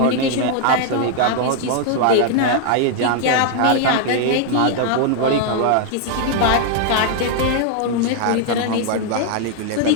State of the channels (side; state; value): both; different; correlation 0.00